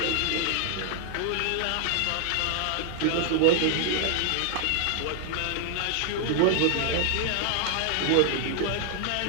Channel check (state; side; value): different; both; correlation 0.00